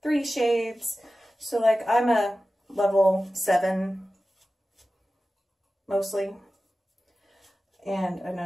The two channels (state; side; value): normal; both; correlation 0.95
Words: 3 shades. So like I'm a level 7 mostly. And I